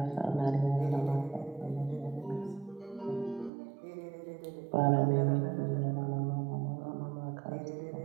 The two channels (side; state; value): left; drops out; at 3.5 s